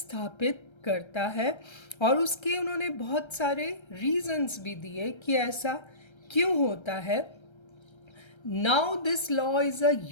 करता है और उसके उन्होंने बहुत सारे रीजंस भी दिए कि ऐसा क्यों होता है। Now this law is a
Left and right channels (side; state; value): right; late; 1.3 ms